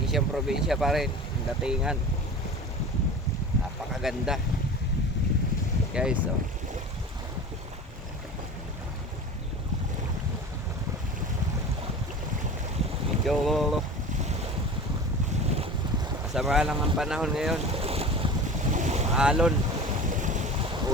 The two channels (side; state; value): both; normal; correlation 0.35